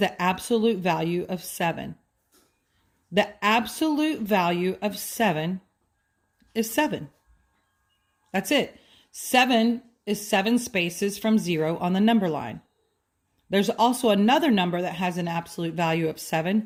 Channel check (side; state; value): both; identical; correlation 1.00